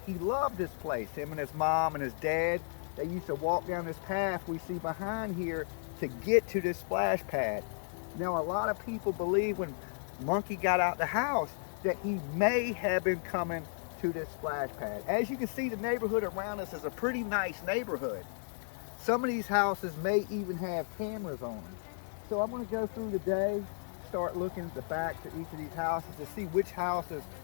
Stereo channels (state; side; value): silent; right; digital silence